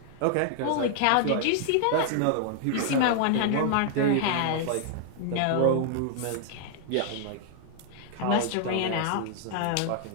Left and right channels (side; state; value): both; different; correlation 0.00